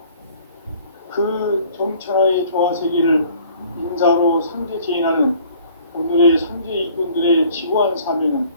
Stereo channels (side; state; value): both; inverted; correlation -0.54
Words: 그 정천하의 조화 세계를 인사로 상제 제인하는 오늘의 상제 일꾼들의 지구한 사명은